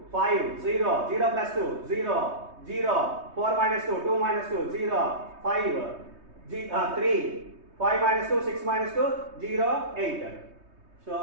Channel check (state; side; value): late; left; 3.2 ms